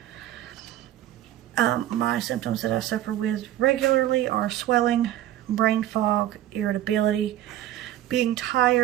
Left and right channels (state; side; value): quieter; left; 13.1 dB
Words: My symptoms that I suffer with regularly are swelling, brain fog, irritability, being